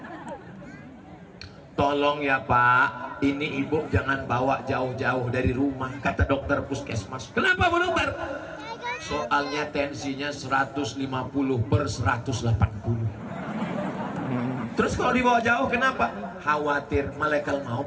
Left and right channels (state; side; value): identical; both; correlation 1.00